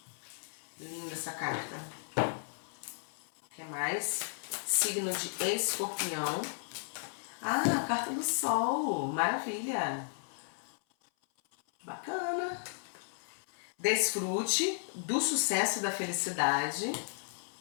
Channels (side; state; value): right; silent; 55 dB below the other